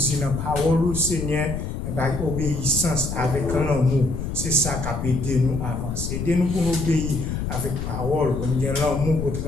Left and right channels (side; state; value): left; noise; rumble, 4 dB below the sound